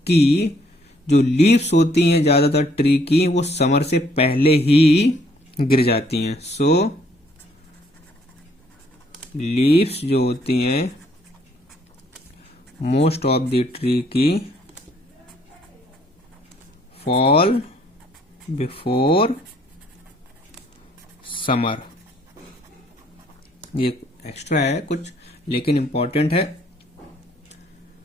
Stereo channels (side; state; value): both; normal; correlation 0.66